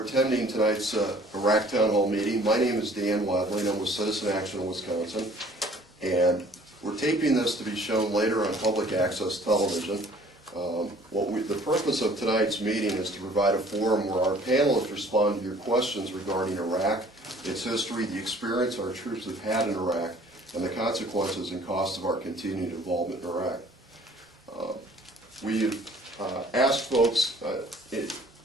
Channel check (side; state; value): both; normal; correlation 0.54